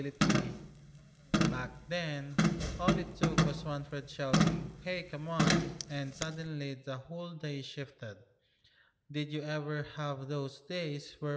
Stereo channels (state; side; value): identical; both; correlation 1.00